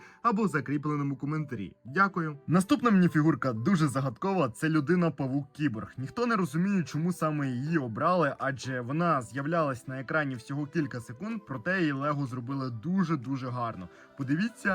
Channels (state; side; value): identical; both; correlation 1.00